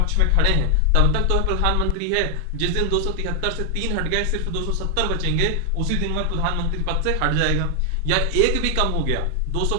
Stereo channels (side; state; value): both; different; correlation 0.00